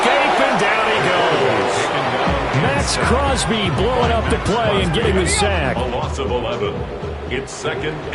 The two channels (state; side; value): identical; both; correlation 1.00